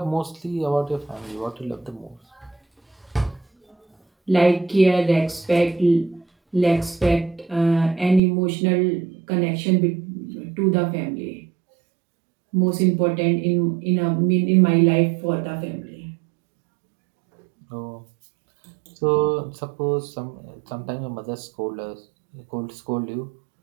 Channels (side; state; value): left; drops out; at 8.2 s